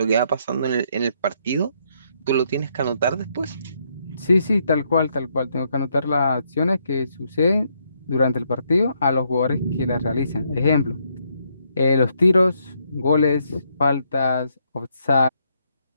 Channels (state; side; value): inverted; both; correlation -0.74